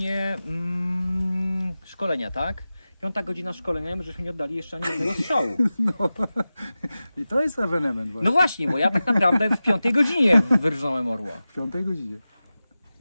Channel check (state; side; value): inverted; both; correlation -0.95